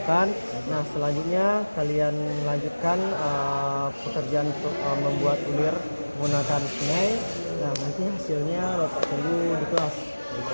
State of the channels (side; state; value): both; inverted; correlation -1.00